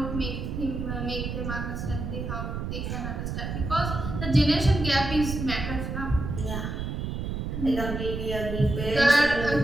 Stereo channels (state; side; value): noise; right; rumble, 4 dB below the sound